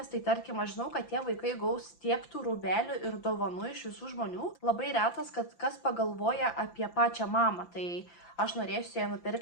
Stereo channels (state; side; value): late; right; 5.9 ms